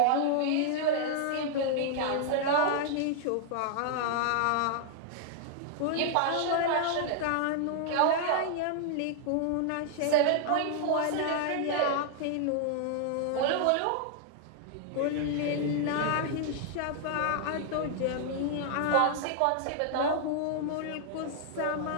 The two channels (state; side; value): different; both; correlation -0.01